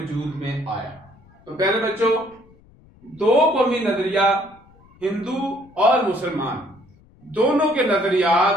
میں آیا۔ تو پہلے بچوں، 2 قومی نظریہ، ہندو اور مسلمان، دونوں کے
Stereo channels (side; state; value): left; noise; rumble, 28 dB below the sound